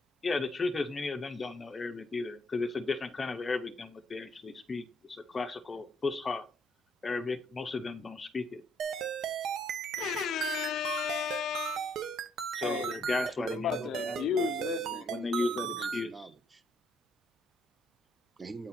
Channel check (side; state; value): both; normal; correlation 0.70